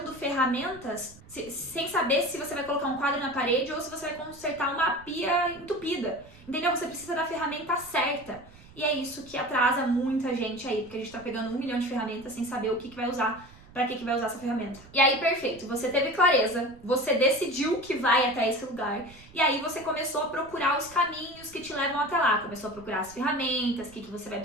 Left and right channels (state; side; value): noise; right; rumble, 22 dB below the sound